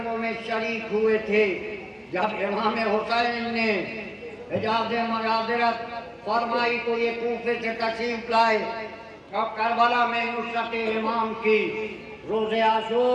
میں شریک ہوئے تھے. جب امام حسین نے اجازت معذرت فرمائی تو یہ کوفے سے تشریف لائے اور کربلا میں نصرت امام کی. روز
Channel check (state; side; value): identical; both; correlation 1.00